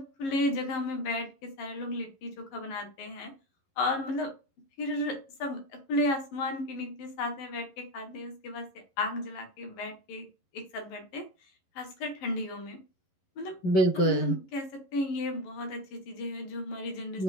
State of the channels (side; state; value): right; late; 11 ms